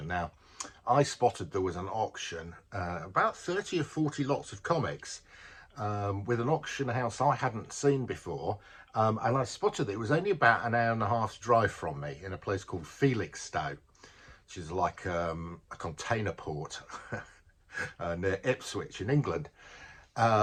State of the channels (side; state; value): both; identical; correlation 1.00